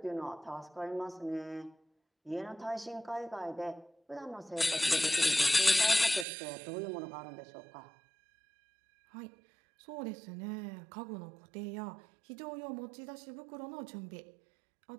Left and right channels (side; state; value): left; drops out; at 6.2 s